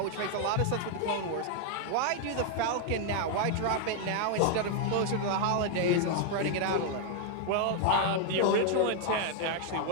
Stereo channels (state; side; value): different; both; correlation 0.00